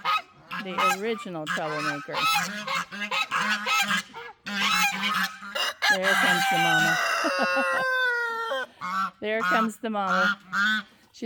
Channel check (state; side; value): identical; both; correlation 1.00